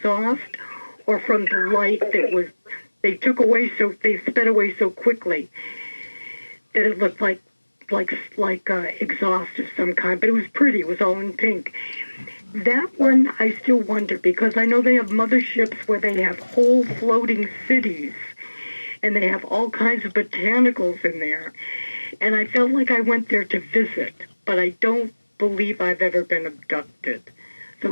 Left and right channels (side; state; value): both; inverted; correlation -1.00